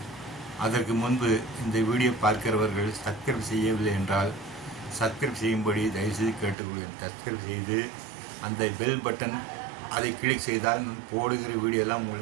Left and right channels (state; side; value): drops out; left; at 6.6 s